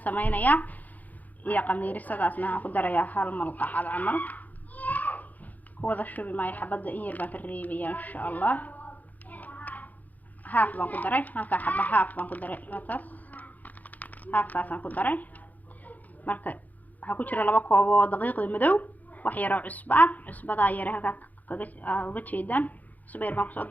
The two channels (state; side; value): late; right; 0.080 ms